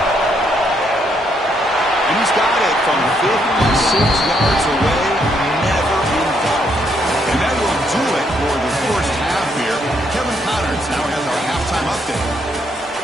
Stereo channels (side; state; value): both; normal; correlation 0.74